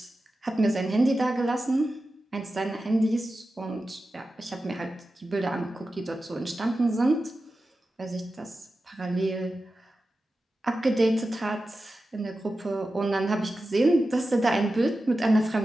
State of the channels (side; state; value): both; normal; correlation 0.93